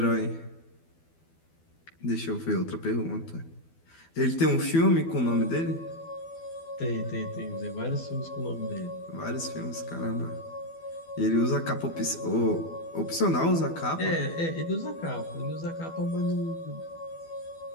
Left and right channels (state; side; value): late; right; 12 ms